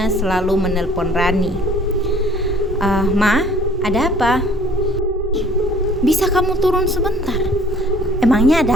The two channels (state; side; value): normal; both; correlation 0.54